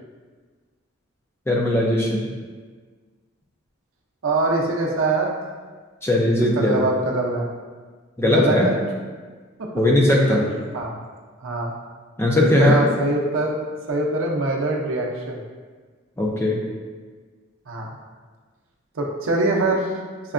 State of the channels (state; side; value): normal; both; correlation 0.44